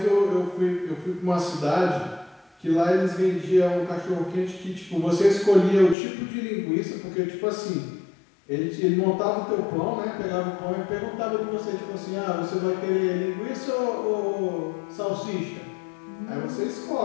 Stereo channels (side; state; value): right; drops out; at 6.0 s